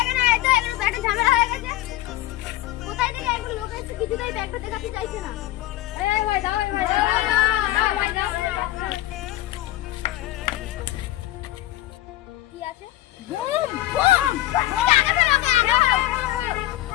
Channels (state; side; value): quieter; right; 15.4 dB